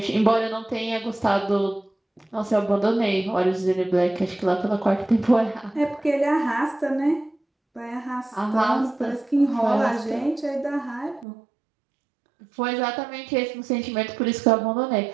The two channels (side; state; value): left; drops out; at 11.2 s